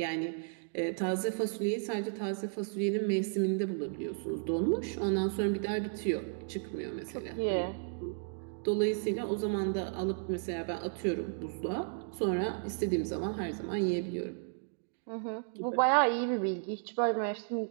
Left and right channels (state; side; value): silent; left; digital silence